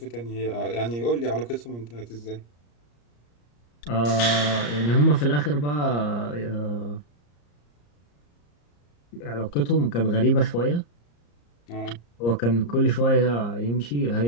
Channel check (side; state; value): right; late; 34 ms